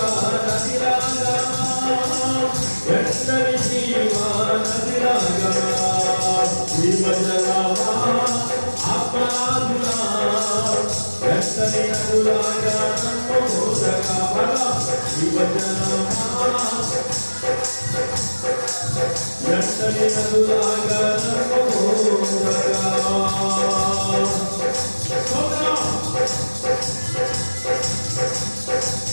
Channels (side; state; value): both; inverted; correlation -1.00